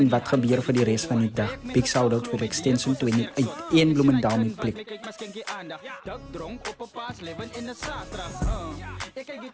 wat gebeurt voor de rest van die dag. Big shout-out voor de extension 28. Eén Bloemendaal met plek. Dak dronk op een paas, leven in de zaterdag. Ik kijk die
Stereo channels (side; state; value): both; identical; correlation 1.00